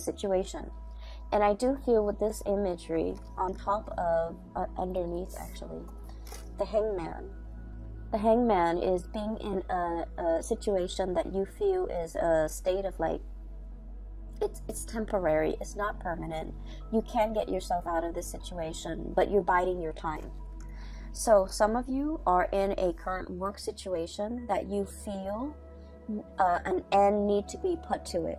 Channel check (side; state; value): both; identical; correlation 1.00